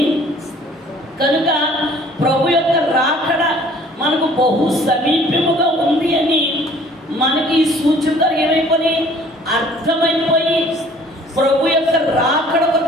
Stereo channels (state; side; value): normal; both; correlation 0.54